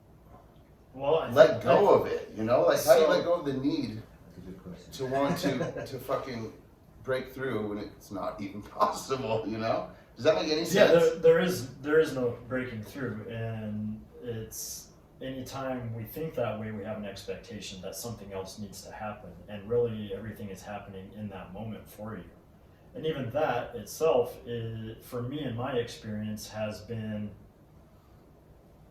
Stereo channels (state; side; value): identical; both; correlation 1.00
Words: let go of it, you know? Like, how do you let go of the need That's a good question. to want to fucking break through when it's not even possible, you know? Does that make any sense? Yeah, there is no breaking through, and it's anytime we think that way, we have an expectation that something else needs to happen, and really everything is happening in that moment for you. And even that itself, for me in my experience, has been